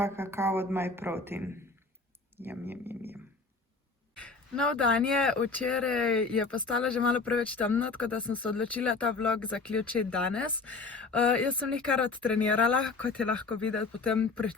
kakao od My Protein. Jam. Nov dan je, včeraj je postalo že malo preveč temno, tako da sem se odločila ta vlog zaključiti danes. Jaz sem kar odtrenirala, kot je lahko videti po tem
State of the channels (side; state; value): right; quieter; 4.0 dB